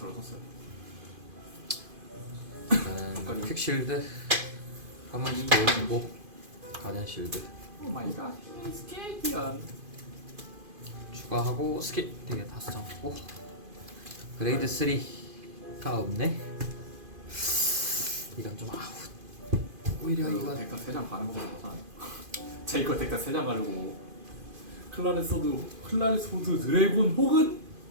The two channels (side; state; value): left; late; 2.5 ms